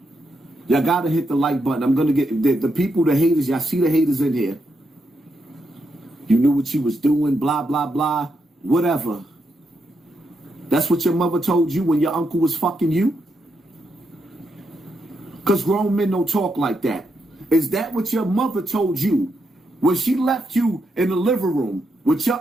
Y'all got to hit the like button. I'm going to get the people, the haters. Y'all see the haters in here. You knew what you was doing, blah, blah, blah, whatever. That's what your mother told you when your uncle was fucking you? Because grown men don't talk like that. Is that what your mother told you when she left you in the living room with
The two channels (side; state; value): both; normal; correlation 0.82